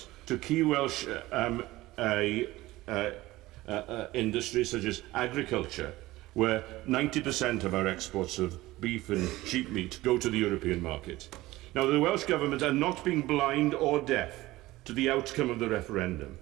to key Welsh industries such as agriculture, where 90% of our exports of beef and sheep meat go to the European market. Now, the Welsh Government are not being blind or deaf to the outcome of the referendum.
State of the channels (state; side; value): quieter; left; 18.0 dB